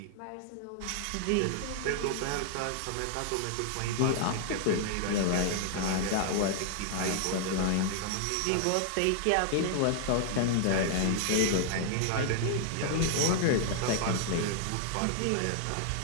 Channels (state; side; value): different; both; correlation -0.01